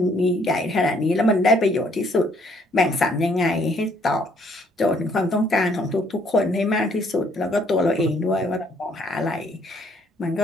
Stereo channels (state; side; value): normal; both; correlation 0.65